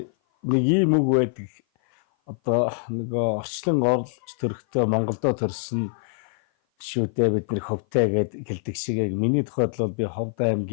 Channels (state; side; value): silent; right; 56 dB below the other